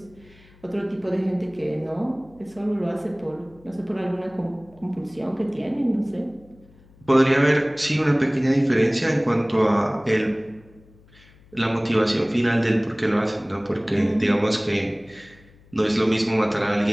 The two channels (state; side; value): noise; left; hum, 27 dB below the sound